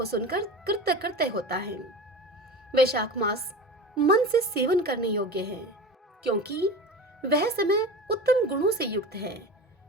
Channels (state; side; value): normal; both; correlation 0.31